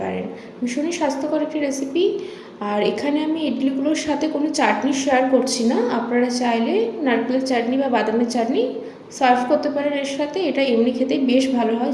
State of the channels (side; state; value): both; identical; correlation 1.00